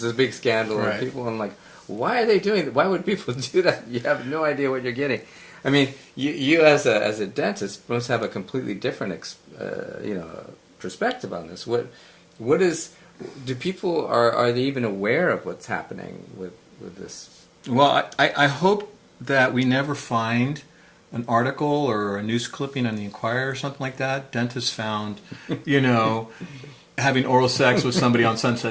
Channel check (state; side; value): identical; both; correlation 1.00